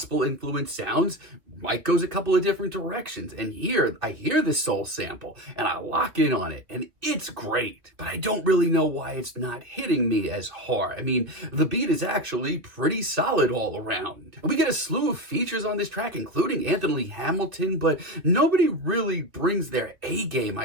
sounds, Mike goes a couple of different directions. And here, I hear this soul sample, and I lock in on it, and it's great. But I don't really know why it's not hitting me as hard. I mean, the beat is actually pretty solid all around. And we get a slew of features on this track, including Anthony Hamilton, but nobody really brings their A game,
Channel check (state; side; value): late; left; 2.4 ms